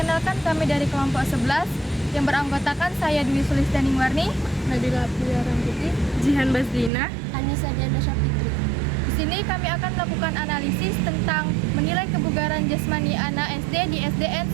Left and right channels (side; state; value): left; drops out; at 6.9 s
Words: kami dari kelompok 11 yang beranggotakan saya Dwi Sulistianing Warni, Nabila Abdullah Rambuti, Jihan Basdina, Anissa Diana Syafitri. Di sini kami akan melakukan analisis tentang menilai kebugaran jasmani anak SD di SDN